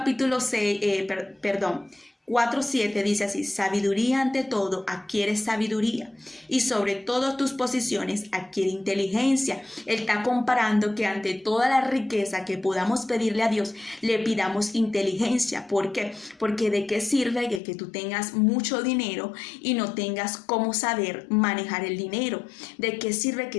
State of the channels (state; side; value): drops out; right; at 17.6 s